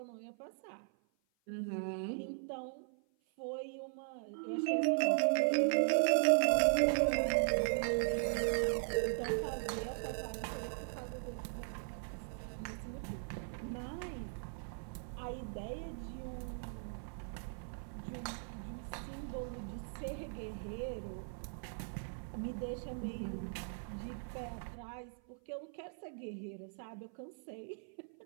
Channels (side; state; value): left; silent; 52 dB below the other